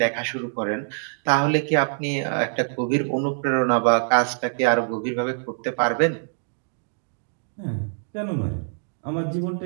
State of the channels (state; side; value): silent; left; digital silence